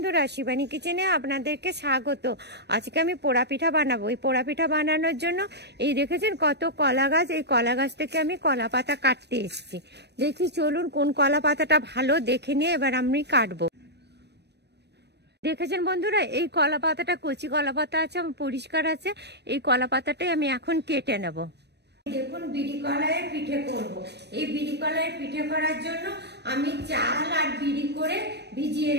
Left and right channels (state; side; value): late; left; 0.49 ms